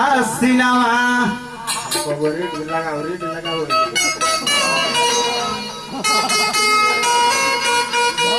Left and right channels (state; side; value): noise; left; rumble, 28 dB below the sound